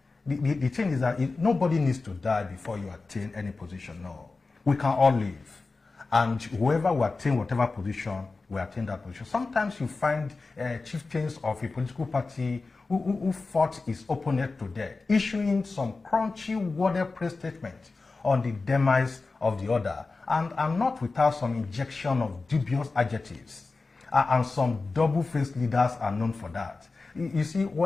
The thing is that nobody needs to die before you attain any position. No, we can all live, and whoever will attain whatever position, we attain that position. Sometimes you find chieftains of a political party who fought his opponent to death, issuing some crunchy worded press statement on the demise of the other, and not without some injection of dubious adjectives. And some double-faced leaders are known for that. You see,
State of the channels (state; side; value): quieter; right; 3.8 dB